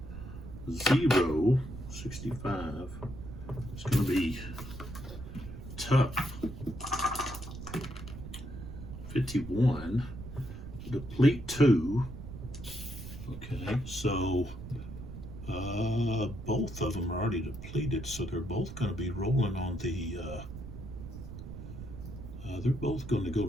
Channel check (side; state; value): right; noise; rumble, 10 dB below the sound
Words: 0, 65. It's going to be tough. 51, deplete 2. Okay, so both of them are already depleted, so they're both going to be rolling on the, they're both going to go